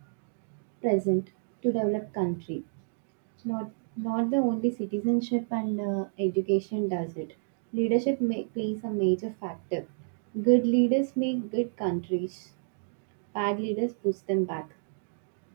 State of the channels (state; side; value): silent; left; digital silence